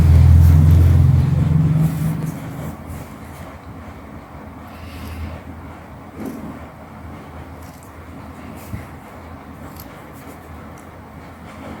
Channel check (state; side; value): identical; both; correlation 1.00